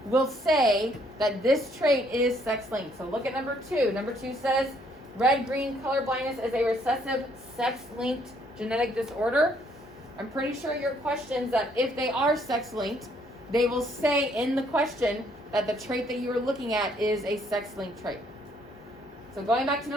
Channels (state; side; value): normal; both; correlation 0.67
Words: will say that this trait is sex-linked. So look at number 2. Number 2 says red-green color blindness is a recessive sex-linked genetic disorder. I'm pretty sure your questions that if they are sex-linked, they will say in the question that the trait that you are looking at is a sex-linked trait. So going back to